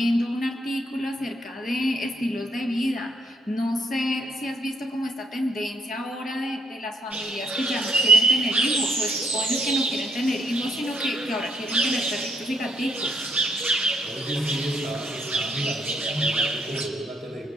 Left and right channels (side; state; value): both; normal; correlation 0.71